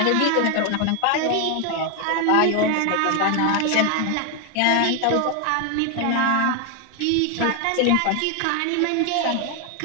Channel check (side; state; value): both; different; correlation 0.01